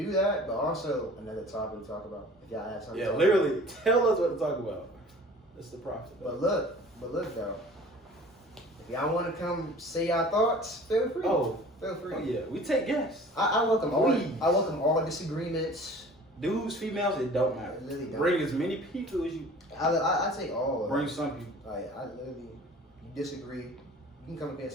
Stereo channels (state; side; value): normal; both; correlation 0.46